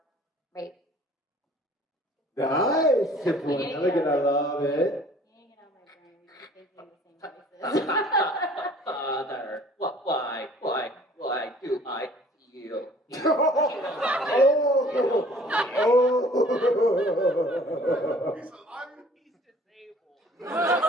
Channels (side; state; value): both; normal; correlation 0.52